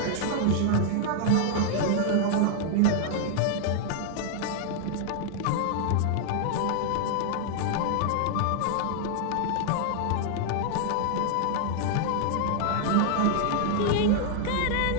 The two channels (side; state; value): both; different; correlation 0.00